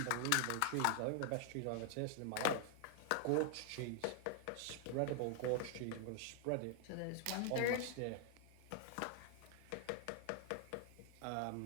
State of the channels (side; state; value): both; different; correlation 0.00